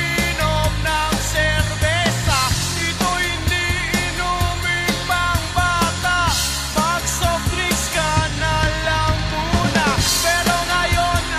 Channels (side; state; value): both; identical; correlation 1.00